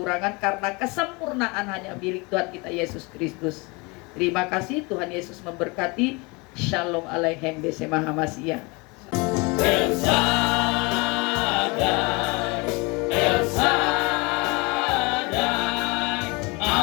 karena kesempurnaan hanya milik Tuhan kita Yesus Kristus. Terima kasih, Tuhan Yesus memberkati. Shalom Aleichem Besema Hamasya. El Shaddai, El Shaddai,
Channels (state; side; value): quieter; right; 27.5 dB